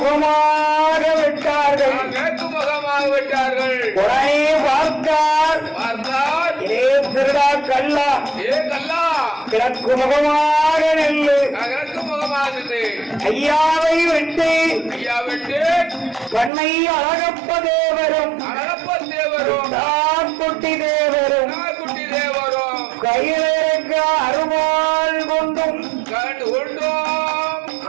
விட்டார்கள். மேற்கு முகமாக விட்டார்கள். உடனே பார்த்தார். பார்த்தால் ஏ திருடா கல்லா, ஏ கல்லா கிழக்கு முகமாக நெல்லு. கிழக்கு முகமாகுது. ஐயாவை விட்டு ஐயா விட்டு பண்ணை அழகப்ப தேவரும் அழகப்ப தேவரும் குட்டி தேவரும் குட்டி தேவரும் கையிலிருக்க அருவாள் கொண்டும் கண்டு கொண்டோம்.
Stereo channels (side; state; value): left; drops out; at 16.5 s